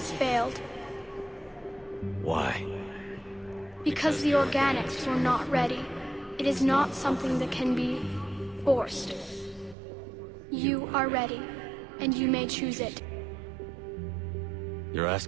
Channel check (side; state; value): left; drops out; at 9.8 s